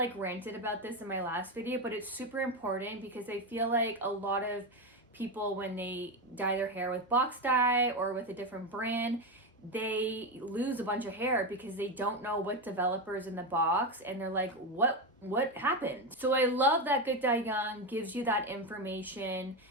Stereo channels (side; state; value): both; normal; correlation 0.13